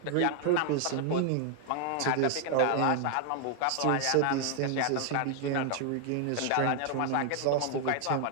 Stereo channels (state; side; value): different; both; correlation 0.00